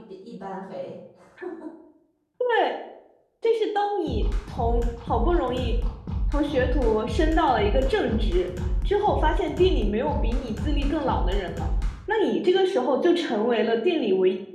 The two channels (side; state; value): both; identical; correlation 1.00